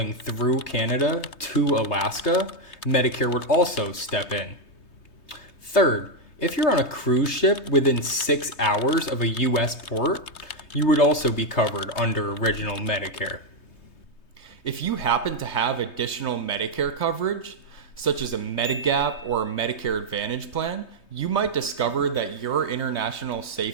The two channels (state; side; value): late; right; 3.2 ms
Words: through Canada to Alaska, Medicare would also step in. Third, if you're on a cruise ship within 6 hours of a US port, you would also be covered under original Medicare. If you happen to have additional Medicare coverage, such as a Medigap or a Medicare Advantage plan, you might discover that your international